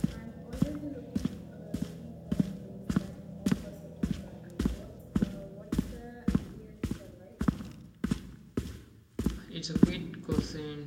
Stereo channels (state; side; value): identical; both; correlation 1.00